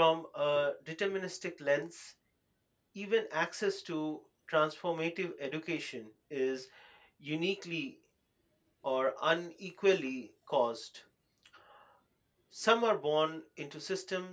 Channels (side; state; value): both; identical; correlation 1.00